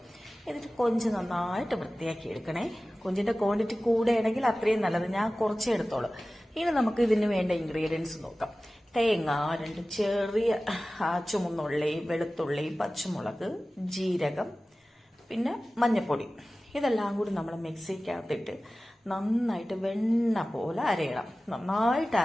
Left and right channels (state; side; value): normal; both; correlation 0.97